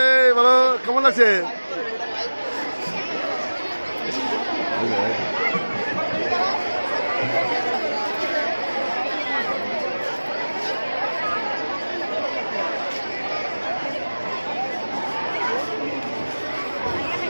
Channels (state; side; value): inverted; both; correlation -1.00